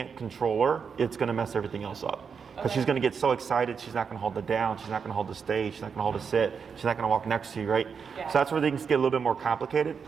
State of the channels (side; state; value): left; quieter; 6.2 dB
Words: control her, it's going to mess everything else up. Because she's going to get so excited, she's not going to hold it down, she's not going to hold the stage, she's not going to hold a sit, she's not going to walk next to you, right? Yeah. So that's where things get a little bit more complicated.